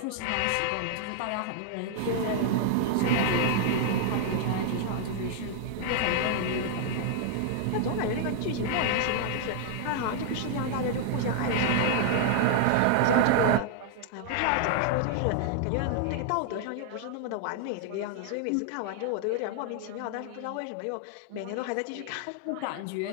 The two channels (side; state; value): both; different; correlation 0.00